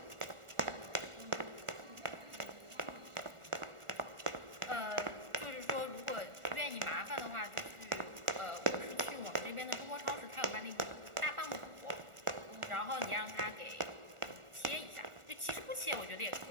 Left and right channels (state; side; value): late; left; 1.4 ms